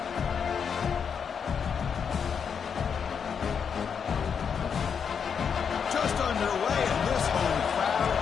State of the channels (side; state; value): right; quieter; 6.8 dB